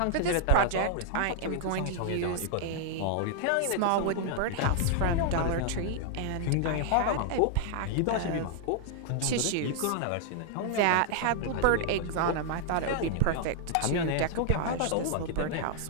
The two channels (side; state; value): both; different; correlation -0.01